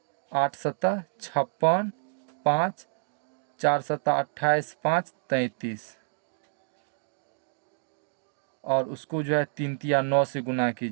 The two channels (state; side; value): silent; left; digital silence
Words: 8 7 56, 5 4 7 28, 5 33। और उसको जो है 3 3 9 से गुना